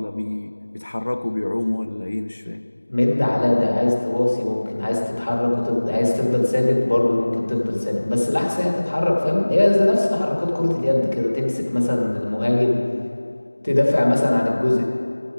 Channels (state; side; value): inverted; both; correlation -1.00